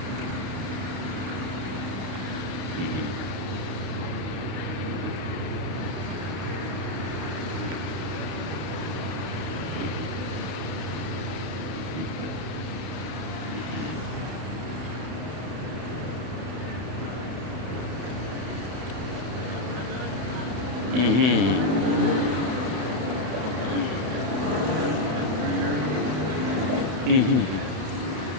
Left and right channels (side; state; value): left; late; 32 ms